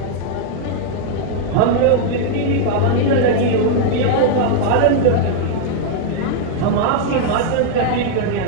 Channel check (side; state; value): both; different; correlation 0.00